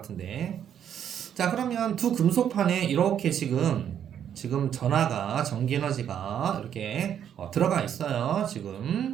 자, 그러면 두 금속판에 이렇게 지금 전하가 전기 에너지가 이렇게 들어가 있어요.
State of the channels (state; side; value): quieter; left; 9.3 dB